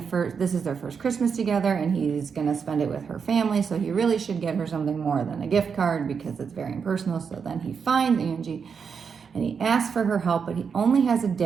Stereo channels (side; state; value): left; quieter; 6.2 dB